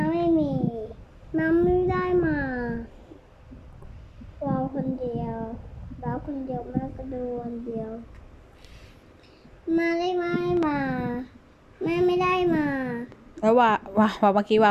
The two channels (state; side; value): identical; both; correlation 1.00